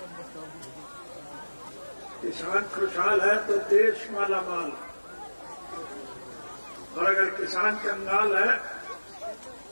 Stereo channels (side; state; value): both; inverted; correlation -1.00